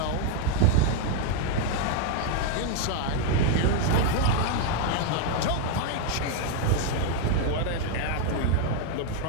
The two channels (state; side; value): different; both; correlation 0.01